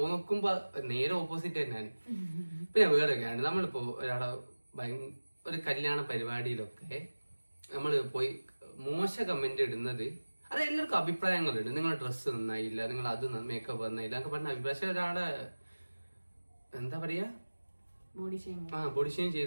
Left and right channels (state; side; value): inverted; both; correlation -1.00